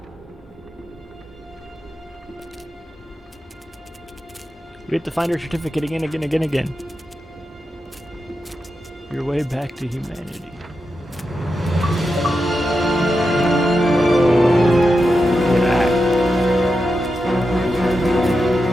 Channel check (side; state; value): both; normal; correlation 0.88